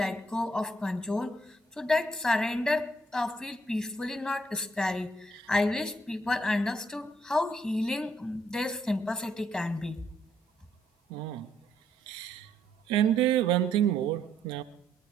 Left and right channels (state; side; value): normal; both; correlation 0.71